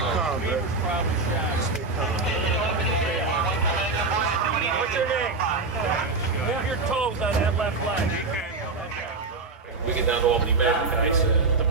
calm, man. Stay calm. What's your name? Move your toes on that left leg. We get down to Albany, Mass, guys. The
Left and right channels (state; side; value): quieter; left; 3.8 dB